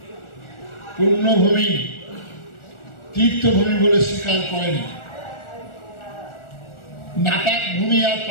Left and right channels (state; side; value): late; right; 1.4 ms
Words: পুণ্যভূমি, তীর্থভূমি বলে স্বীকার করেনি। নাপাক ভূমি আর